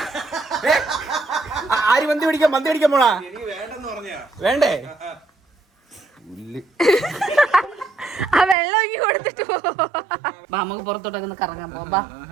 ആര് മന്തി പിടിക്കാൻ? മന്തി പിടിക്കാൻ പോണാ? വേണ്ടേ? ആ വെള്ളം ഒങ്ങി കൊടുത്തിട്ട് പോ. ബാ നമുക്ക് പുറത്തോട്ടൊക്കെ ഒന്ന് കറങ്ങാൻ പോവാം.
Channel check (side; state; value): left; drops out; at 8.6 s